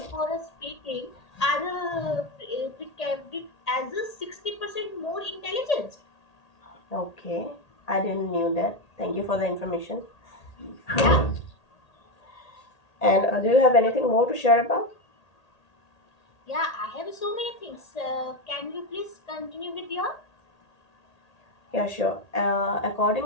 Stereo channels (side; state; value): right; late; 1.8 ms